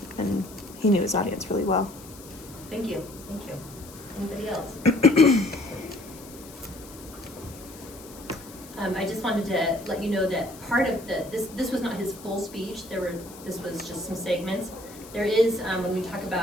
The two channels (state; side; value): noise; left; hiss, 18 dB below the sound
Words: and he knew his audience really well. Thank you. Thank you. Anybody else? I just wanted to let you know that part of this was not his full speech. This was just some segments. There is, when we talk